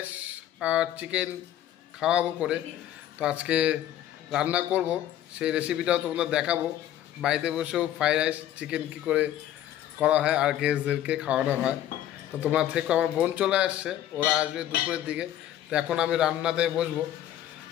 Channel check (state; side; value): quieter; right; 12.0 dB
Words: আর চিকেন খাওয়াবো করে। তো আজকে রান্না করব, সেই রেসিপিটাও তোমাদের দেখাবো। বাড়িতে বসেও ফ্রাইড রাইস চিকেন কী করে করা হয় আর গেস্টদেরকে খাওয়ানো হয়। তো তোমরা থেকে আমার বোন চলে আসছে, ওরা আসবে দুপুরের দিকে। তো এখন আমি রান্নাতে বসবো,